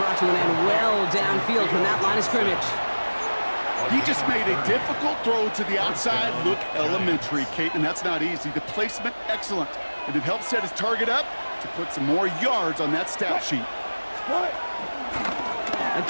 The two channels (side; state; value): both; inverted; correlation -1.00